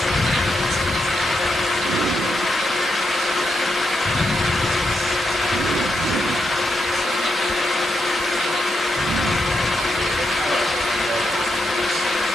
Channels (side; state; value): both; normal; correlation 0.83